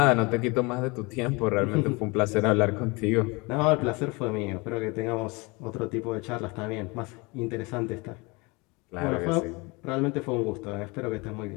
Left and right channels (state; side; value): quieter; right; 26.7 dB